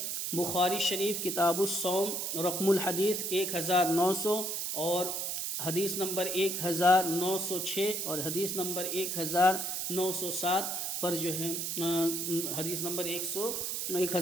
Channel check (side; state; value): right; noise; hiss, 2 dB below the sound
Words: بخاری شریف کتاب الصوم رقم الحدیث 1900 اور حدیث نمبر 1906 اور حدیث نمبر 1907 پر جو ہے حدیث نمبر